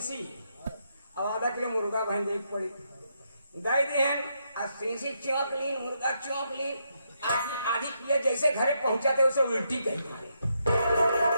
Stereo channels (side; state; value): both; inverted; correlation -0.79